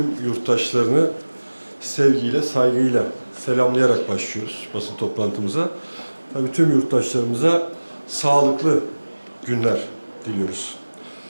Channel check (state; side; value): inverted; both; correlation -1.00